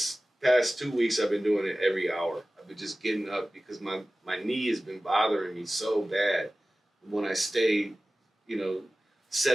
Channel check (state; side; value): normal; both; correlation 0.96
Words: past 2 weeks I've been doing it every hour. I've been just getting up because my knee has been bothering me so bad when I stay,